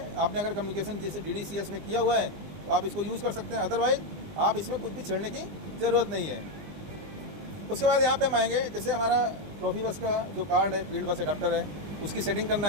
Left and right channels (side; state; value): left; late; 20 ms